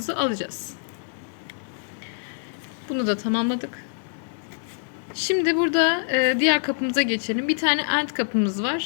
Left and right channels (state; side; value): silent; right; digital silence